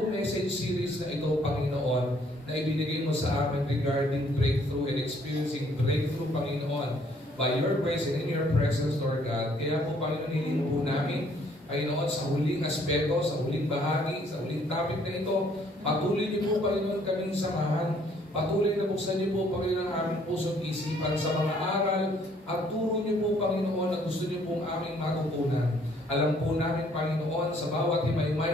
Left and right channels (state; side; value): normal; both; correlation 0.63